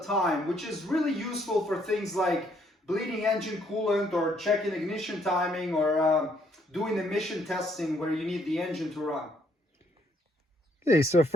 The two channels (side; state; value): both; normal; correlation 0.69